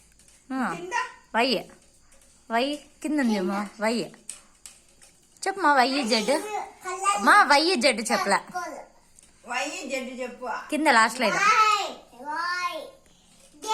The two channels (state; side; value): identical; both; correlation 1.00